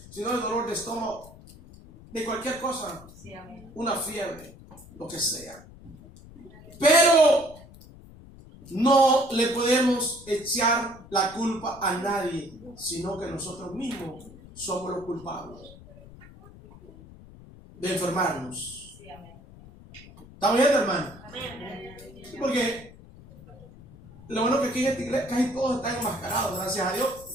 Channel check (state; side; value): noise; left; rumble, 20 dB below the sound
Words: Si no es el dolor de estómago, de cualquier cosa. Sí, amén. Una fiebre, lo que sea. Pero no le podemos echar la culpa a nadie, sino que nosotros mismos somos los culpables de enfermarnos. Sí, amén. ¿Está bien, hermano? Amén. Porque lo bueno que aquí en esta iglesia casi todos están enmascarados, gracias a Dios.